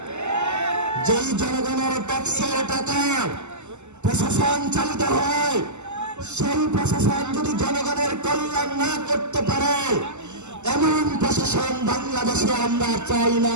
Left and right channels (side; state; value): left; late; 0.83 ms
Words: যেই জনগণের ট্যাক্সের টাকা প্রশাসন চালিত হয়, সেই প্রশাসন যদি জনগণের কল্যাণ না করতে পারে, এমন প্রশাসন বাংলাদেশে আমরা চাই না,